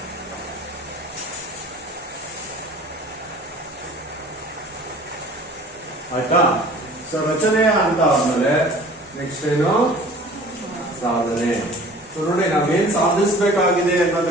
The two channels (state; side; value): normal; both; correlation 0.47